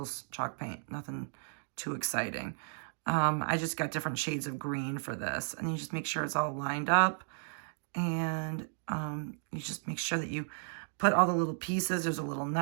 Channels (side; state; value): left; silent; digital silence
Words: chalk paint, nothing too exciting. I just got different shades of green for this. And you just make sure it's all lined up. And you just make sure that you put all the little pieces. There's a little